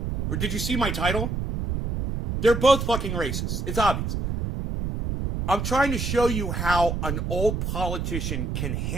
Or did you see my title? They're both fucking racist. It's obvious. I'm trying to show you how an old politician can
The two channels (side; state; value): right; noise; rumble, 2 dB below the sound